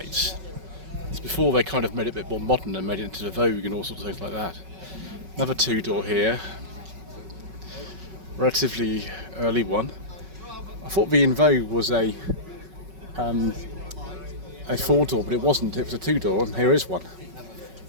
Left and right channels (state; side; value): late; left; 5.3 ms